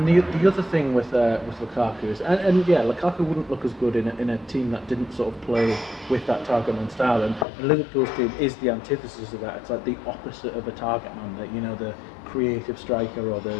the other thing with Lukaku is, and Lukaku wouldn't look as good in a team that didn't sort of play with that target man style. And Liverpool's team is the antithesis of that. It's like the opposite of a target man, you know, the creative striker or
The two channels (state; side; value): drops out; right; at 7.5 s